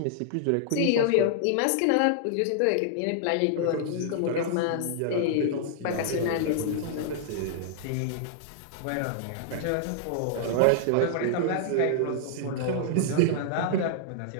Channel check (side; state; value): both; different; correlation -0.01